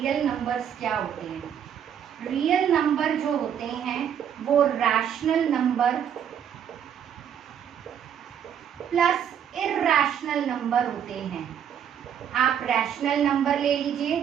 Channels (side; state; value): left; quieter; 8.8 dB